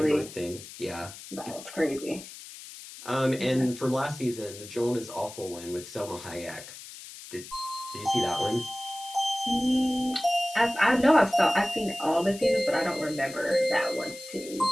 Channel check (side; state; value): left; noise; hiss, 14 dB below the sound